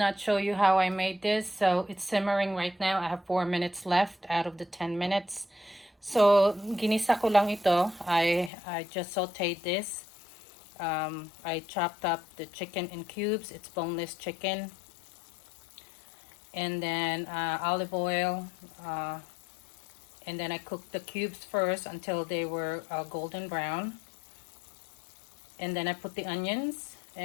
show you how I made this. So it's simmering right now. I have 4 minutes left out of the 10 minutes. So ginisa ko lang ito. I just sauteed this. I chopped up the chicken in cubes. It's boneless chicken. And then olive oil. And then I cooked the cubes first until they were golden brown. And then I put the onions.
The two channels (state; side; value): drops out; right; at 8.5 s